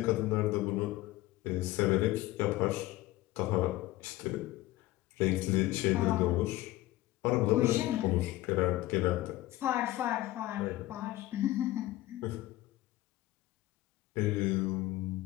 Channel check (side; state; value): right; quieter; 17.1 dB